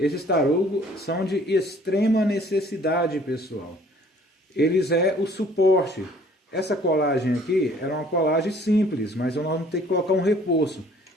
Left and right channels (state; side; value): normal; both; correlation 0.56